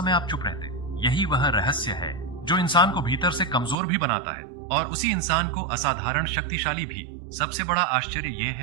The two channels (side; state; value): left; drops out; at 3.8 s